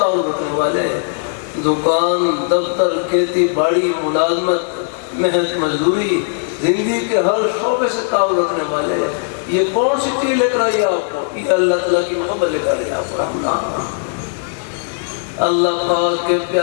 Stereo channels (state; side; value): silent; right; digital silence